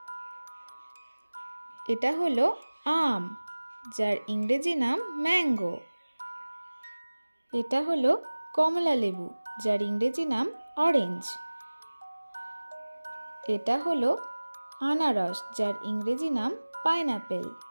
এটা হলো আম, যার ইংরেজি নাম ম্যাঙ্গো। এটা হলো কমলা লেবু, যার ইংরেজি নাম অরেঞ্জ। এটা হলো আনারস, যার ইংরেজি নাম পাইনঅ্যাপেল।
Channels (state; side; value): inverted; both; correlation -1.00